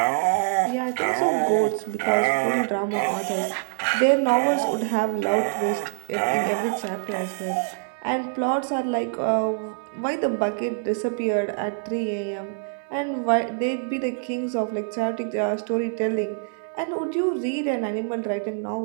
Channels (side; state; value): left; silent; digital silence